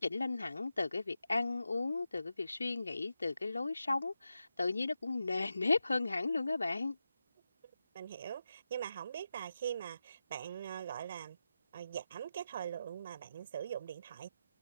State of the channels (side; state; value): both; inverted; correlation -0.90